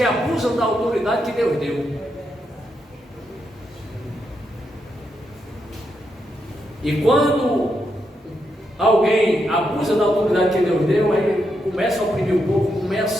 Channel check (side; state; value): both; normal; correlation 0.82